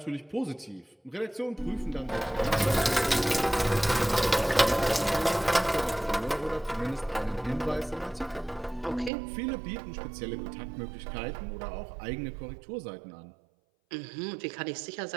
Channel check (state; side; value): drops out; left; at 9.1 s